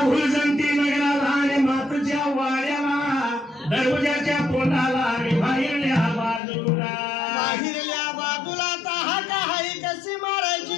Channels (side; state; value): right; drops out; at 6.4 s